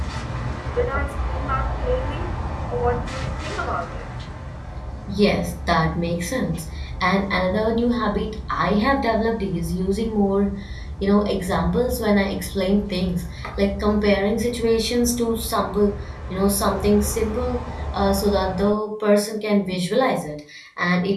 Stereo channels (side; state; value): both; identical; correlation 1.00